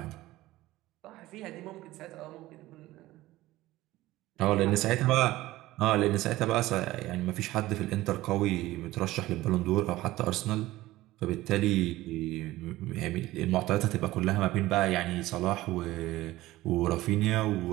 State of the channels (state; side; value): quieter; left; 17.1 dB